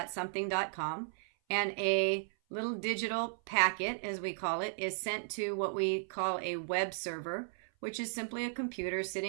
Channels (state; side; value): silent; left; 54 dB below the other